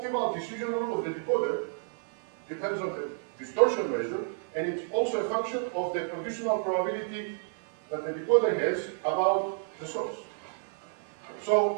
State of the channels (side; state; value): left; silent; 57 dB below the other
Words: decision rule of the decoder depends on the distortion measure, and it's also a function of the conditional probability that the decoder has about the source.